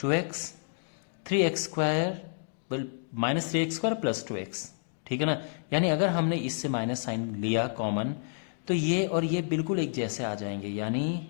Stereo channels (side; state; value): right; silent; digital silence